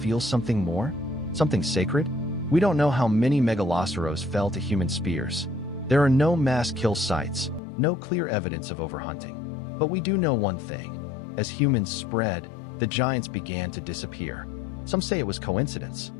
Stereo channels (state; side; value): drops out; right; at 7.6 s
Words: something more? Something sacred? We don't know how many Megaloceros fell to human spears. There are no mass kill sites, no clear evidence of overhunting. But we do know one thing. As humans spread, the giants began to disappear. Some say it was coincidence.